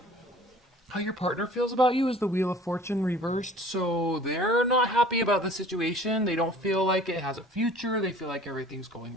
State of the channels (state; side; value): normal; both; correlation 0.48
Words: how your partner feels about you is the Wheel of Fortune reversed. So they're not happy about the situation. They don't feel like it has a future. They feel like everything's going